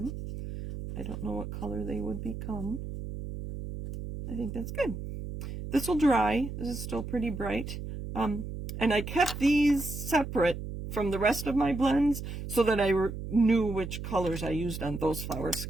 I don't know what color they would become. I think that's good. This will dry. This is still pretty bright. And I kept these separate from the rest of my blends so that I knew which colors I used on those flowers,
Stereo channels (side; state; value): right; noise; hum, 7 dB below the sound